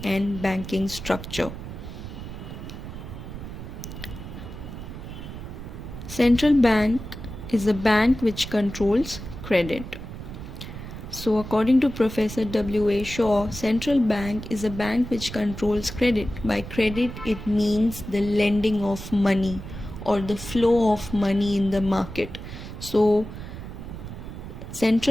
and banking structure. Central bank is a bank which controls credit. So according to Professor W.A. Shaw, central bank is a bank which controls credit. By credit, it means the lending of money or the flow of money in the market. So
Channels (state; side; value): noise; right; rumble, 10 dB below the sound